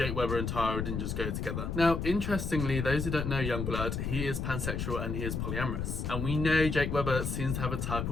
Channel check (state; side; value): noise; left; rumble, 2 dB below the sound